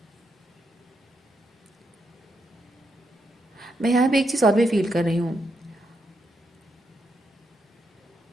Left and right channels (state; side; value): normal; both; correlation 0.81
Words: मैं यहाँ पे एक चीज़ और भी फील कर रही हूँ,